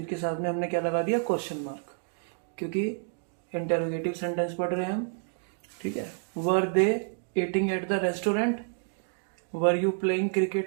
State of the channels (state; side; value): silent; left; 58 dB below the other